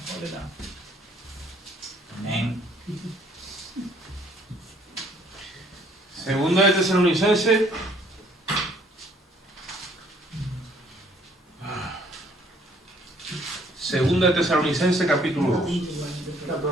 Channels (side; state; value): both; normal; correlation 0.62